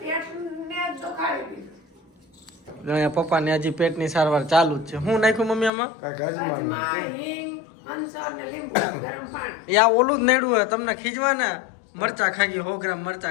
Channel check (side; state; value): right; drops out; at 5.7 s